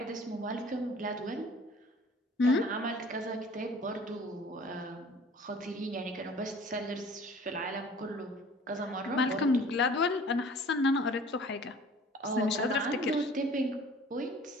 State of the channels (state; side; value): normal; both; correlation 0.49